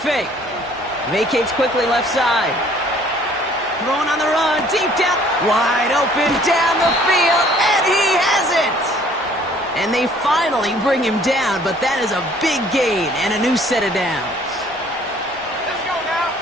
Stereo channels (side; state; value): both; normal; correlation 0.57